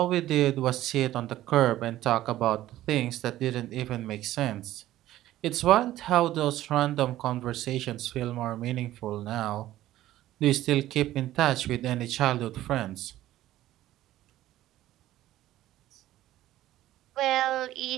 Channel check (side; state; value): left; quieter; 14.4 dB